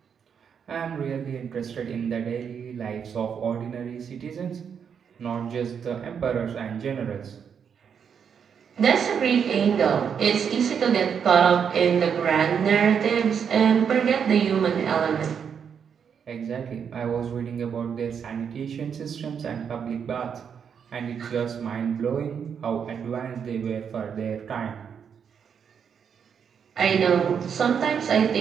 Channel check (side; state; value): left; quieter; 7.3 dB